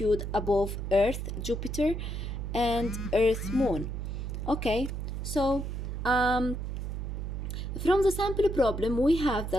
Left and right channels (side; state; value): right; noise; hum, 4 dB below the sound